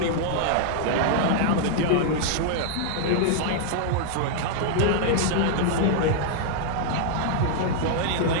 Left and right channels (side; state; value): both; different; correlation -0.01